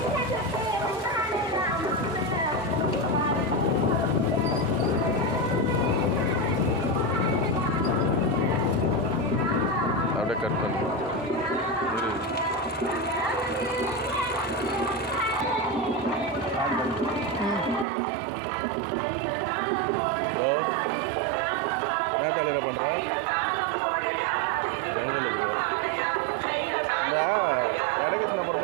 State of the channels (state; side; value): drops out; left; at 17.9 s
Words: அப்படியே கட் பண்ணு. ஹலோ, என்ன காலையில் பண்ணுற? செங்கலுக்கு இந்த எடகிருஷ்ணா